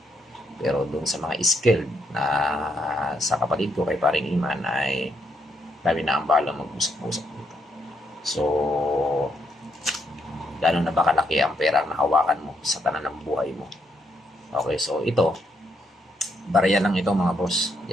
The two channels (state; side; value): normal; both; correlation 0.76